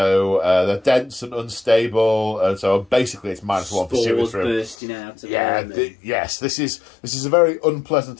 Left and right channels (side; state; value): right; drops out; at 4.8 s